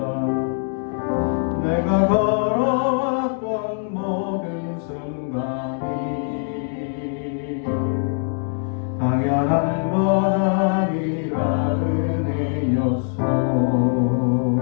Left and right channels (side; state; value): right; silent; 58 dB below the other